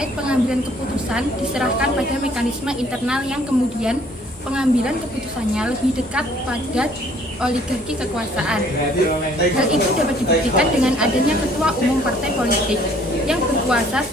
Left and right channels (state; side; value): normal; both; correlation 0.59